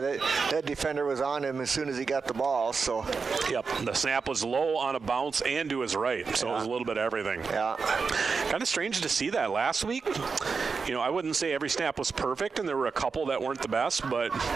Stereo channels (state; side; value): quieter; left; 5.0 dB